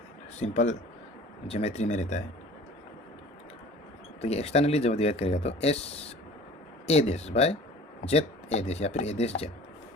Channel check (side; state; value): both; normal; correlation 0.44